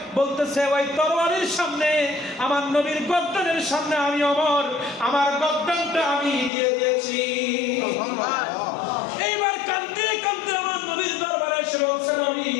বলতেছে ওই তরবারির সামনে, আমার নবীর গর্দানের সামনে আমি ওমর আমার গর্দানটা আমি দিয়ে দিয়েছি। এইবার কাঁদতে কাঁদতে আমার নবীর দরবারে এসে বলছেন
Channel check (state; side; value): drops out; right; at 6.5 s